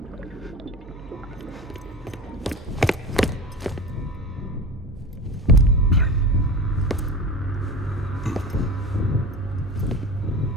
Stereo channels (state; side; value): normal; both; correlation 0.31